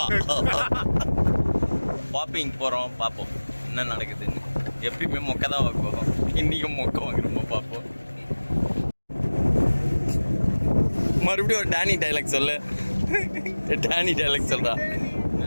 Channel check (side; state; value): both; inverted; correlation -1.00